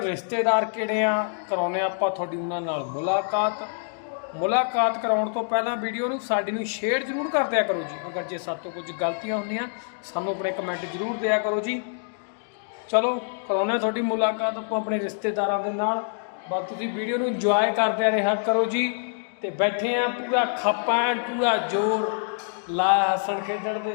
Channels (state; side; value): silent; right; digital silence